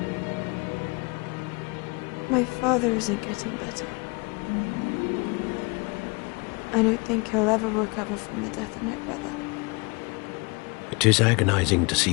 My father isn't getting better. I don't think he'll ever recover from the death of my brother. It is agonizing to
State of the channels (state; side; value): quieter; right; 29.4 dB